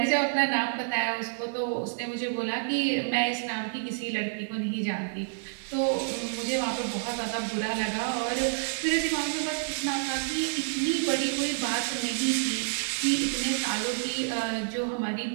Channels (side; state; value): left; silent; digital silence